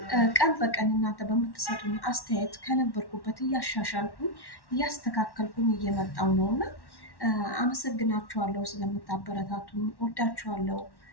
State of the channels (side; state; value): right; late; 1.1 ms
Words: ቀን በቀን እናንተ በምትሰጡኝ አስተያየት ከነበርኩበት እያሻሻልኩኝ እያስተካከልኩኝ እየመጣው ነው እና አመሰግናችኋለሁ ስለምታበረታቱኝ። ወዳችኋለሁ።